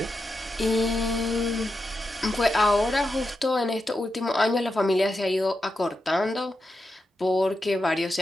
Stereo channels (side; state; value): both; normal; correlation 0.88